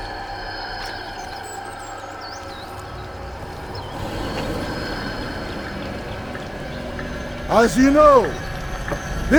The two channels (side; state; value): both; identical; correlation 1.00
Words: As you know,